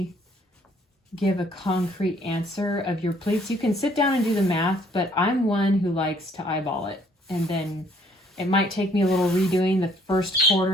give a concrete answer of your pleats. You can sit down and do the math, but I'm one who likes to eyeball it. And then it might take me a little redoing the first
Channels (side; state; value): both; normal; correlation 0.62